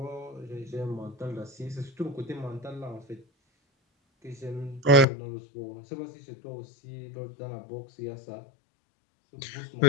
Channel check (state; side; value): drops out; right; at 5.1 s